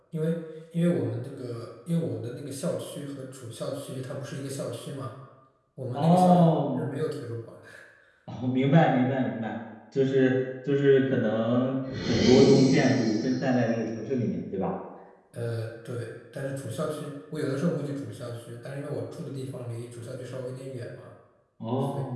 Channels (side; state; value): both; identical; correlation 1.00